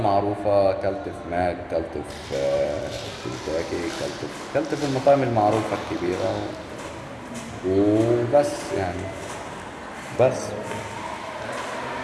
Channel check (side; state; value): both; identical; correlation 1.00